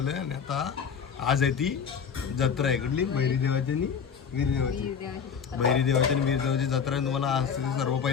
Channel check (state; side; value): quieter; right; 6.8 dB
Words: आणि आता आज आहे ती जत्रा आहे कुठली भैरीदेवाची आणि वीरदेवाची. भैरीदेवाची आणि वीरदेवाची जत्रा आहे. तुम्हाला आज सर्व